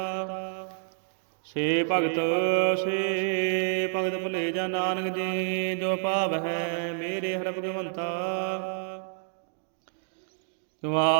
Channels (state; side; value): silent; left; digital silence